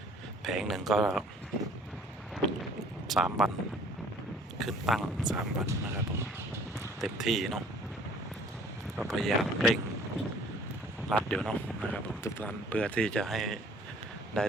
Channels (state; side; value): normal; both; correlation 0.55